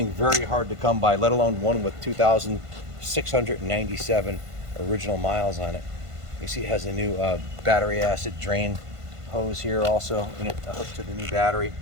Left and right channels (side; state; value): left; late; 1.5 ms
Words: very hard to come by, let alone one with 2,697 original miles on it. You see it has a new battery acid drain hose here also, and it hooked to the new battery,